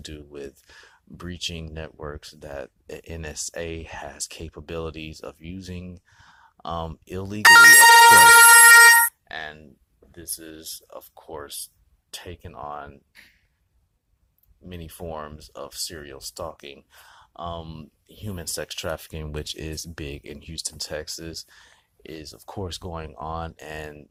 with breaching networks that the NSA has capabilities of using illegally, of course. And this is, of course, taken on many forms of serial stalking. Human sex trafficking, which is big in Houston, Texas, is of course going on, and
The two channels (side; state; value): both; identical; correlation 1.00